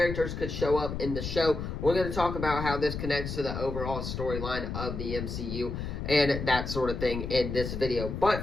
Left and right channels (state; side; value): noise; left; rumble, 5 dB below the sound